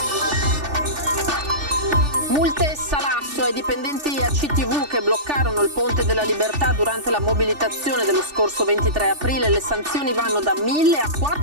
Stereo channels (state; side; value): late; left; 3.4 ms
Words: Multe e salasso ai dipendenti ACTV che bloccarono il Ponte della Libertà durante la mobilitazione dello scorso 23 aprile. Le sanzioni vanno da 1.000 a